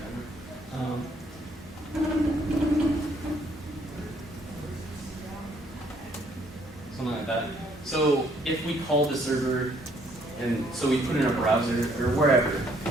Something like that. So if we call the server, and so we put in a browser or wherever,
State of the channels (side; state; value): both; normal; correlation 0.65